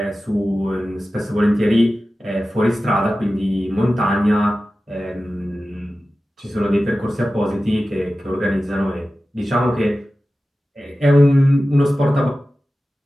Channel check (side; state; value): both; normal; correlation 0.95